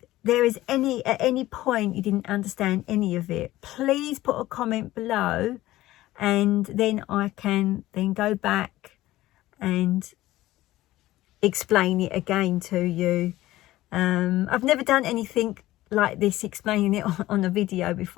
there is at any point you didn't understand any of it, please put a comment below, and then I can then go back and explain it again to you. I've never done anything like this, explaining it on a video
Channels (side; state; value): right; quieter; 16.3 dB